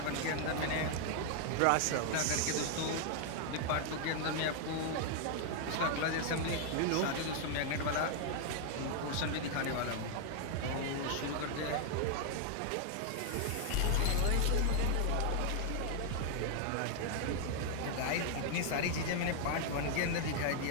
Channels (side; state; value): both; different; correlation 0.00